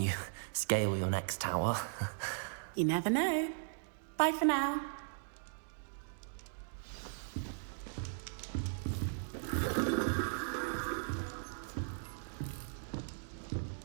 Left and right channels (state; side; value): silent; left; digital silence